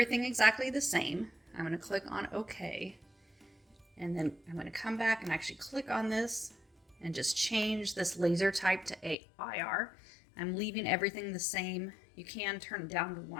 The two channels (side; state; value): right; drops out; at 9.2 s